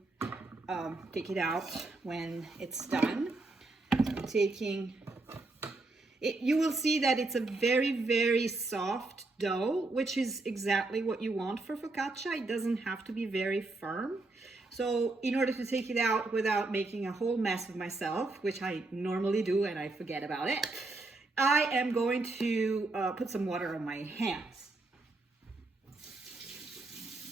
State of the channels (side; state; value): left; quieter; 3.2 dB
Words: take it out when it's done. I'm taking it, you will see that it's a very, very soft dough, which is exactly what you want for focaccia. It doesn't have to be very firm. So in order to take it out without making a whole mess of myself, which I normally do and I forget about it, I am going to put some water on my hands.